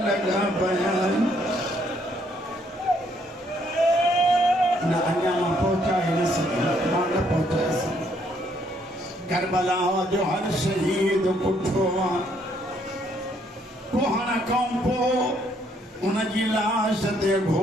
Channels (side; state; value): both; normal; correlation 0.69